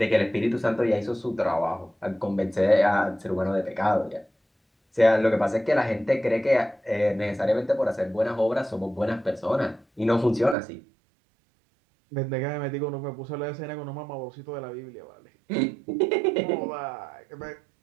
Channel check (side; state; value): left; drops out; at 10.6 s